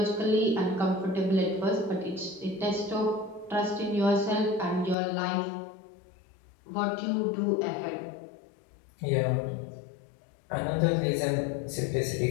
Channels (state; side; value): drops out; right; at 5.0 s